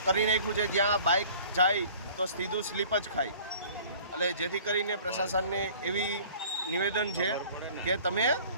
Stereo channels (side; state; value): both; inverted; correlation -0.49